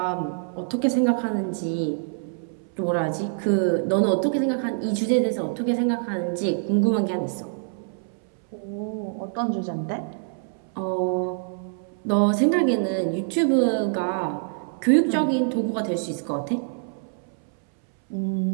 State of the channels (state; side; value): silent; left; 62 dB below the other